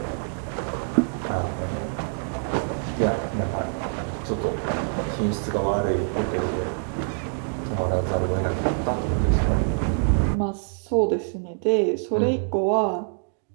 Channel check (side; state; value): left; silent; 62 dB below the other